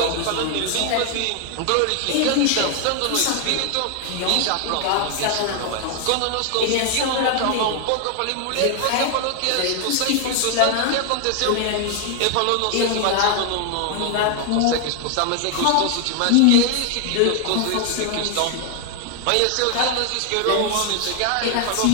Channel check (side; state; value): both; different; correlation 0.00